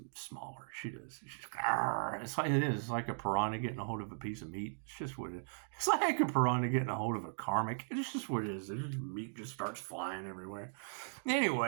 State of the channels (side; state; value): left; silent; digital silence